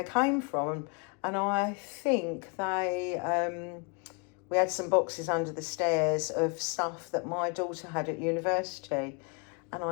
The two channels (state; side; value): quieter; right; 34.8 dB